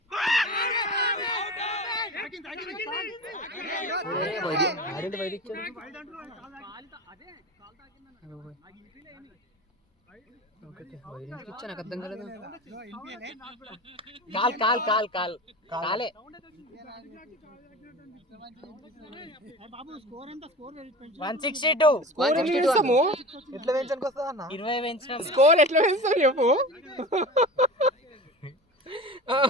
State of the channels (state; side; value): normal; both; correlation 0.34